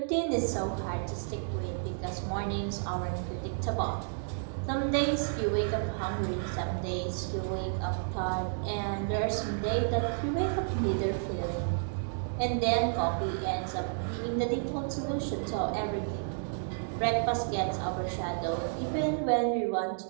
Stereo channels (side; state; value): left; silent; digital silence